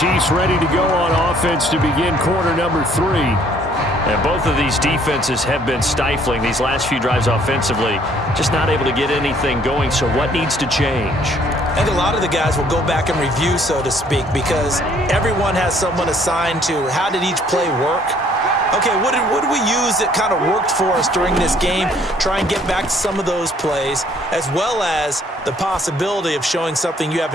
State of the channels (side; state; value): both; normal; correlation 0.62